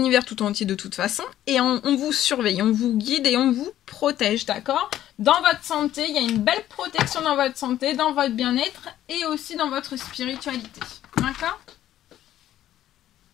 tout entier de toute façon, et on vous surveille, on vous guide et on vous protège, d'accord? Dans votre santé, il y a une belle protection dans votre santé, dans votre bien-être et aussi dans votre spiritualité, d'accord?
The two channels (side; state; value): right; quieter; 12.5 dB